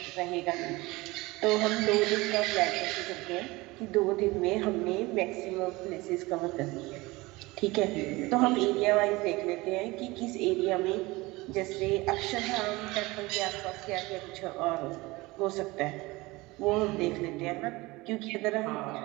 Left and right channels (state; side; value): quieter; left; 21.9 dB